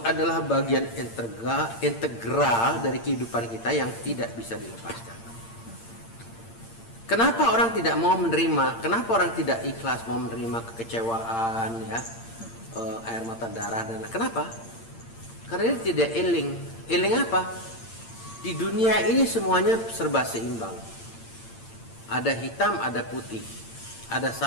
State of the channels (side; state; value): right; late; 8.8 ms